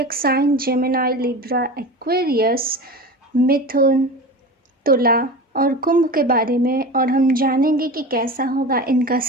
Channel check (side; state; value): both; normal; correlation 0.31